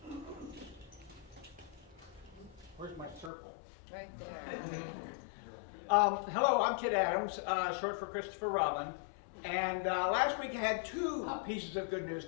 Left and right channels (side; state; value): right; drops out; at 3.3 s